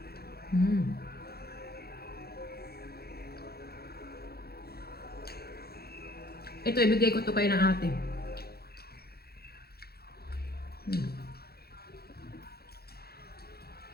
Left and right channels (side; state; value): right; late; 0.46 ms